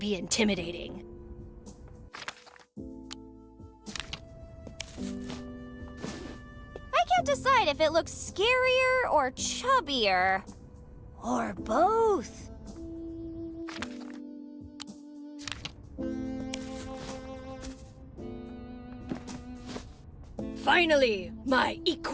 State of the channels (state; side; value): identical; both; correlation 1.00